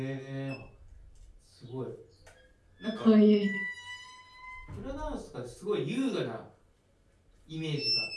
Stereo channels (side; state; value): both; identical; correlation 1.00